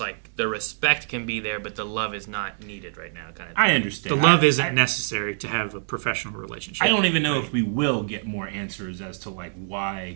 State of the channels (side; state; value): left; silent; digital silence